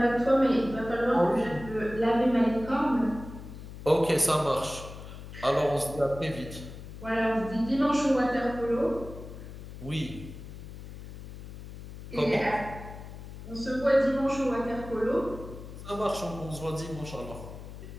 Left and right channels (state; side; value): noise; left; hum, 12 dB below the sound